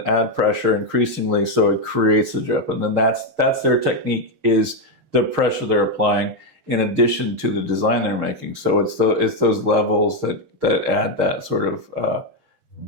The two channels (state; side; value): late; left; 6.5 ms